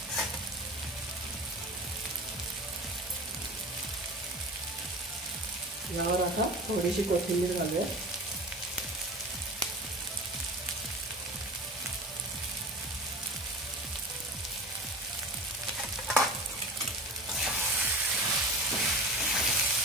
यावर आता थोडीशी कोथिंबीर घालूया.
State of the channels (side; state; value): both; normal; correlation 0.34